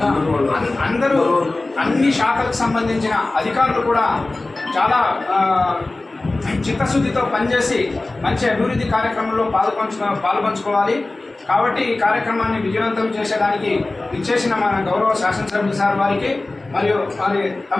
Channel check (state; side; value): quieter; right; 3.0 dB